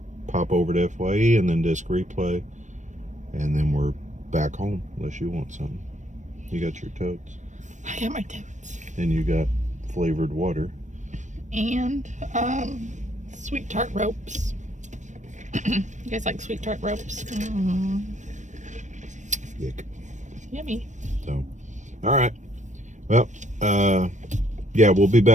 pop over to FYE and then disc replay, and then we're back home. Unless you want something. You got your totes. I got my totes. And you got flavored water. And sweet tart ropes. You guys like sweet tart ropes? Yuck. Yummy. So, all right. Well, yeah, we'll be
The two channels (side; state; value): left; late; 0.35 ms